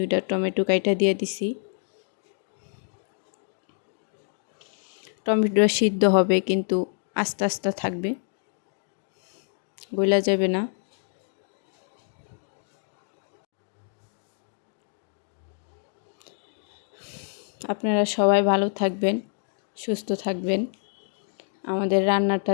টমেটো কাইটা দিয়ে দিছি। টমেটোটা সিদ্ধ হবে কিন্তু আস্তে আস্তে থাকবে, গলা যাবে না। আপনারা সবাই ভালো থাকবেন, সুস্থ থাকবেন, আমাদের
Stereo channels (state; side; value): silent; right; digital silence